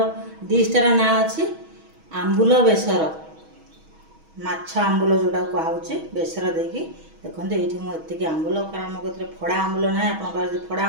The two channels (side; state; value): left; late; 6.2 ms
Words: डिशटार ना अच्छी आंबुल बेसर माछ आंबुल जोटा कहुचे बेसर देकी देखो ये मुझे आंबुल कारण मो कह फड़ा आंबुल ना आप फड़ा